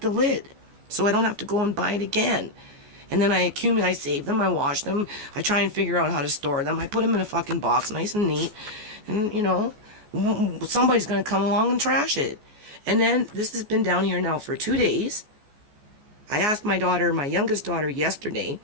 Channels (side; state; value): left; late; 14 ms